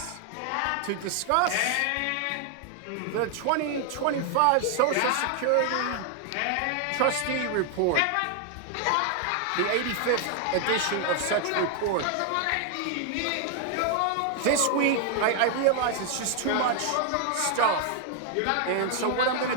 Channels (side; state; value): both; different; correlation 0.00